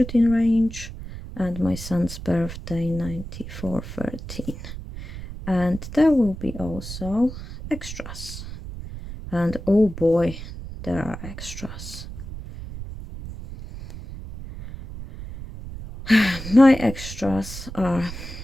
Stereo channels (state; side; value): noise; right; rumble, 11 dB below the sound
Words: range, and my son's birthday 9413. And there will be also extras. And oh boy, there are extras. My extras are